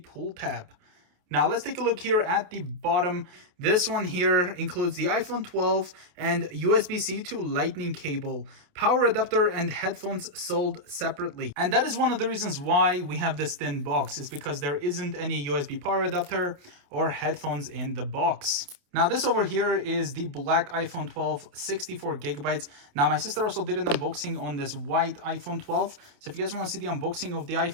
tab. Now let's take a look here at the bottom. This one here includes the iPhone 12 and USB-C to Lightning cable, power adapter and headphones sold separately. And that is one of the reasons why we have this thin box, is because there isn't any USB power adapter or headphones in the box. Now this over here is the black iPhone 12, 64 gigabytes. Now my sister also did an unboxing on this white iPhone 12. So if you guys want to see the unboxing of the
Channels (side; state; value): left; late; 28 ms